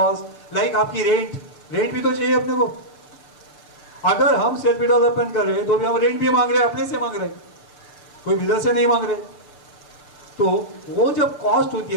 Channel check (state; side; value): late; right; 6.6 ms